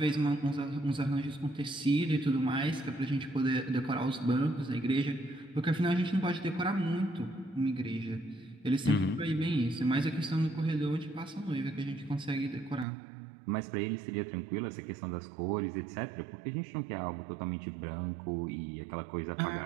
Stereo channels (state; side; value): drops out; left; at 12.9 s